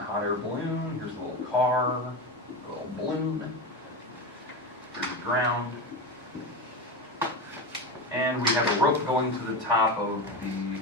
hot air balloon, here's the little car, the little balloon, here's the ground. And we have a rope going to the top of the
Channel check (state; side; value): normal; both; correlation 0.19